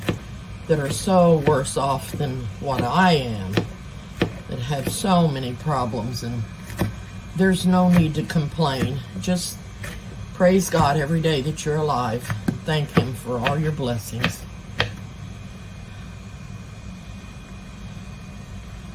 that are so worse off than what I am, that have so many problems, and there's no need to complain. Just praise God every day that you're alive. Thank Him for all your blessings.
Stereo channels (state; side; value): identical; both; correlation 1.00